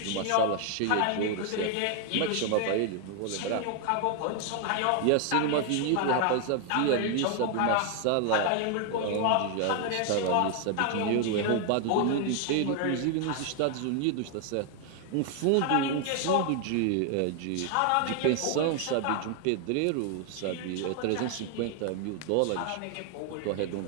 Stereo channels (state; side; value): different; both; correlation 0.00